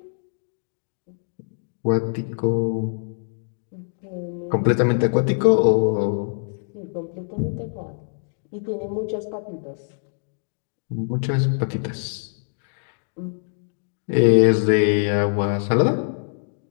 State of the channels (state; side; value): silent; right; digital silence